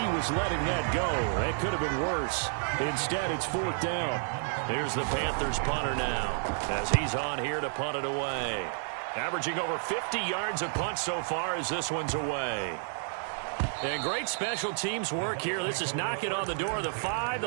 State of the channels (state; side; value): silent; left; 57 dB below the other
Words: was letting that go. That could have been worse. Instead, it's 4th down. Here's the Panthers punter now as he's on here to punt it away. Averaging over 50 yards a punt so far as this one's away. And great special teams work here. This is knocking on the door of the 5.